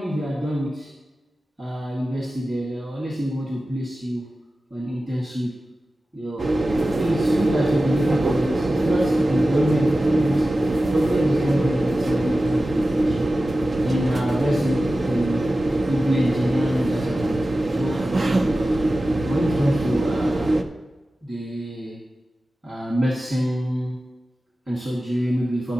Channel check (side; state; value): both; normal; correlation 0.95